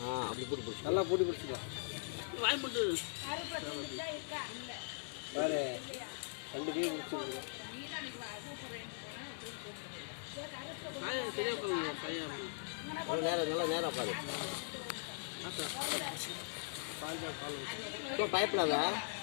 அப்படி பூட்டி பிடிச்சி நல்லா பூட்டி பிடிச்சிக்கலாம் வாய் போட்டு வேறு 2 கை பிடிச்சிருக்கு நேரம் நல்லா நேரம் பாரு இப்போ பயப்படாத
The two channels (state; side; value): silent; right; digital silence